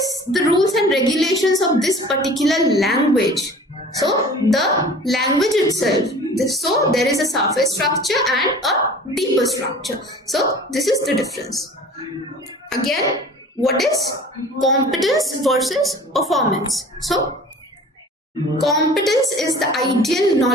the rules and regulations of this particular language? So the language itself, so there is a surface structure and a deeper structure. So this is the difference. Again, what is competence versus performance? So competence is the ideal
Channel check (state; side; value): normal; both; correlation 0.44